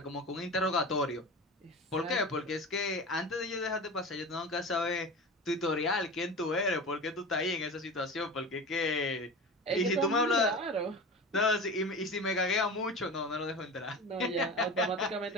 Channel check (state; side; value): normal; both; correlation 0.31